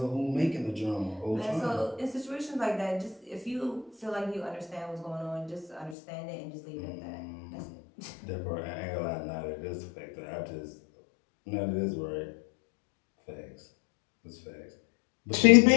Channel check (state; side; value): drops out; right; at 6.0 s